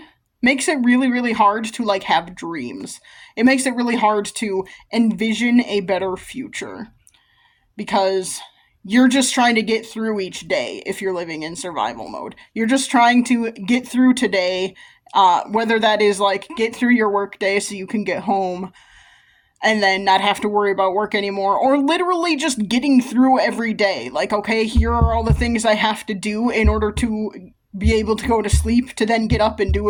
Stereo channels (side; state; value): both; identical; correlation 1.00